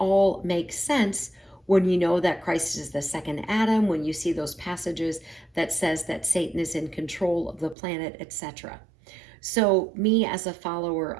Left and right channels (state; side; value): drops out; left; at 7.8 s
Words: makes sense when you know that Christ is the second Adam, when you see those passages that says that Satan is in control of the planet, etc. So me as a follower